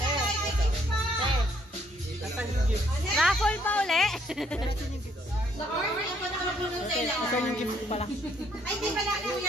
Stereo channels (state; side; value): normal; both; correlation 0.68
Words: Raffle pa uli. Ito yung gift pala.